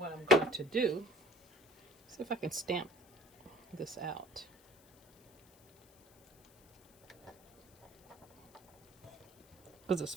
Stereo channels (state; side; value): noise; left; hiss, 29 dB below the sound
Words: I'm going to do, see if I can stamp this out. Because it's